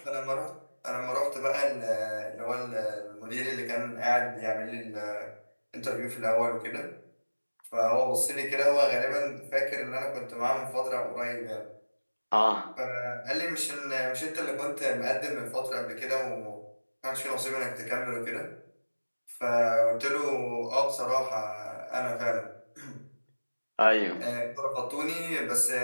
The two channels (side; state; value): both; inverted; correlation -1.00